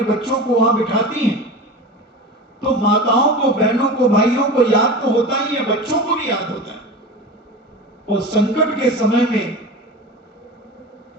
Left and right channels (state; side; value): normal; both; correlation 0.30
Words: बच्चों को वहां बिठाती हैं, तो माताओं को, बहनों को, भाइयों को याद तो होता ही है, बच्चों को भी याद होता है। और संकट के समय में